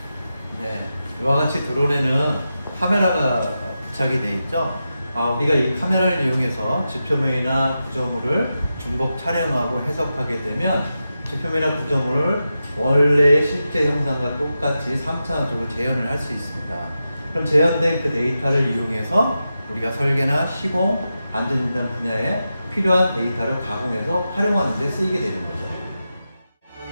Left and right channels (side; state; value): both; inverted; correlation -0.90